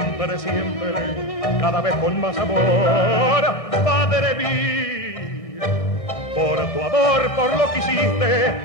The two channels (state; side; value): late; right; 1.7 ms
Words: siempre, cada vez con más amor, Padre mío, por tu amor, por lo que hiciste,